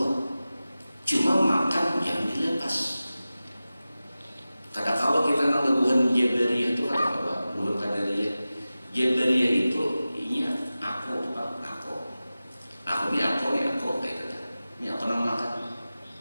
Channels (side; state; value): both; inverted; correlation -0.96